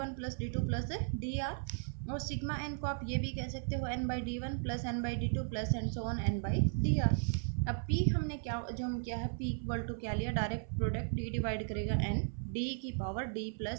plus d2 plus dr, और सिग्मा n को आप ये भी कह सकते हो n by d1 plus n by d2 plus and so on n by dr। अब p हमने क्या जो हम क्या है, p इक्वल टू क्या लिया, डायरेक्ट प्रोडक्ट d डिवाइड करेगा n, d की power d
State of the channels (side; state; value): left; silent; 54 dB below the other